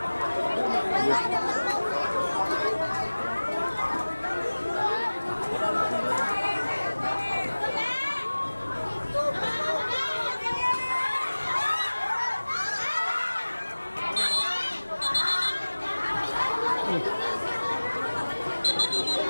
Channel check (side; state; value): both; inverted; correlation -1.00